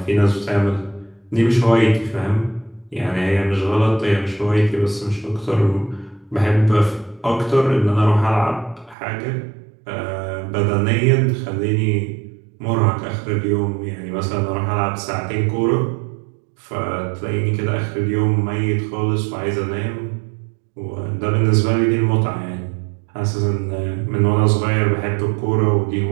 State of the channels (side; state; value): left; drops out; at 9.0 s